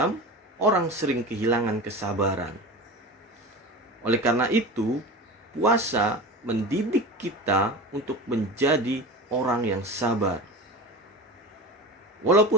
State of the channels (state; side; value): normal; both; correlation 0.31